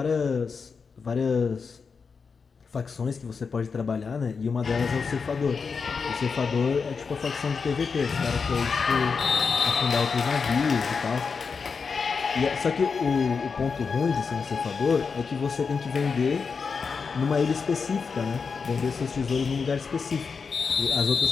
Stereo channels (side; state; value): right; quieter; 5.3 dB